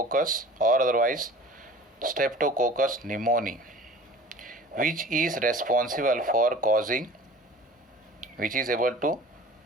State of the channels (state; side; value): normal; both; correlation 0.43